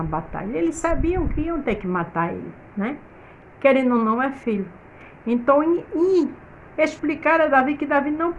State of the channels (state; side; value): identical; both; correlation 1.00